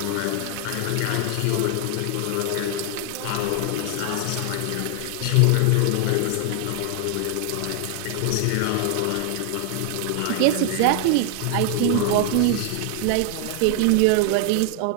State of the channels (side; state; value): both; different; correlation 0.00